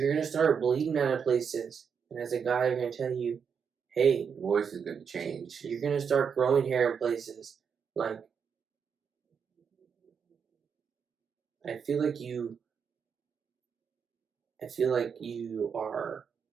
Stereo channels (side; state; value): left; quieter; 6.7 dB